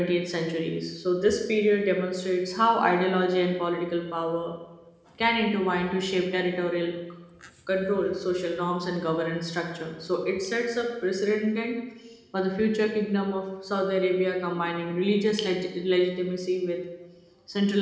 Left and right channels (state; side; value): identical; both; correlation 1.00